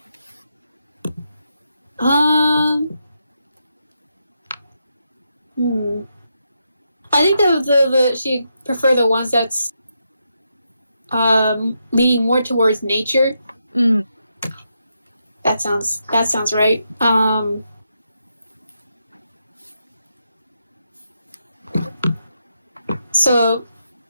I think the she prefer the ones that's leaning more towards nature. That sounds right. So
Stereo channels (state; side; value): inverted; both; correlation -0.83